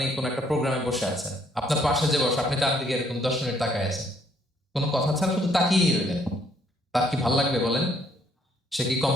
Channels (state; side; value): normal; both; correlation 0.67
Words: কোন একটা প্রোগ্রামে বসে আছেন, আপনার পাশে যে বসে, আপনি তার দিকে এরকম 10 মিনিট তাকায় আছেন, কোনো কথা ছাড়া শুধু তাকিয়ে রইলেন। তার কি ভালো লাগবে বলেন? সে কি